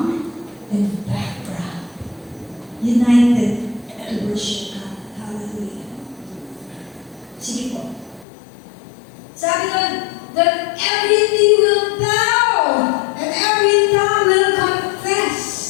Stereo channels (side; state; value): right; drops out; at 8.2 s